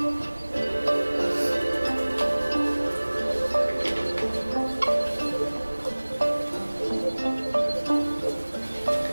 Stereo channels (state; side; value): inverted; both; correlation -1.00